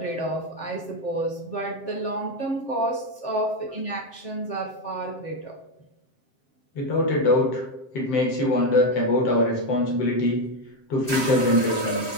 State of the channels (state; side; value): late; right; 7.6 ms